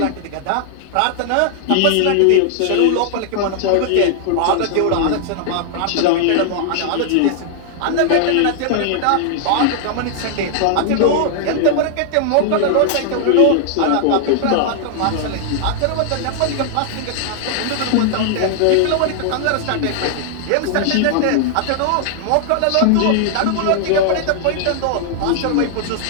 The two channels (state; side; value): different; both; correlation 0.00